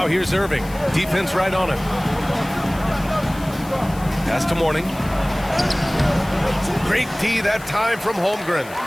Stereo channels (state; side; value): noise; left; hiss, 19 dB below the sound